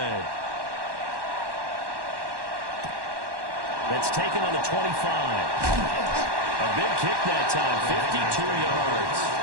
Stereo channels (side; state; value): left; late; 1.1 ms